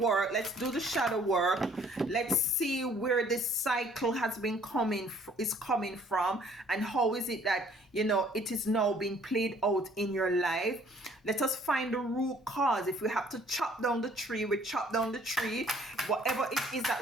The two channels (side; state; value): both; normal; correlation 0.59